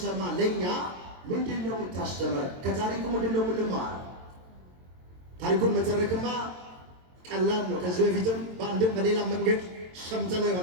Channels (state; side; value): late; left; 22 ms